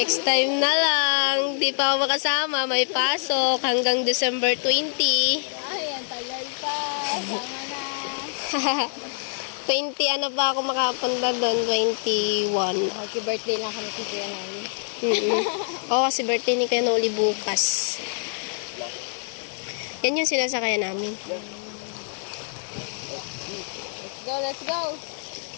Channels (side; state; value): right; silent; digital silence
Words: time na lang. Di pa ako makasama. May pasok hanggang December 20. Ay, ang tagal pa. Sama na. 20 pa ako makapunta doon? 21. Happy birthday lang kami kay Kuya Noli. Oo, kasi birthday ni Kuya Noli bukas. Yan yung sinasakayan namin. Let's go!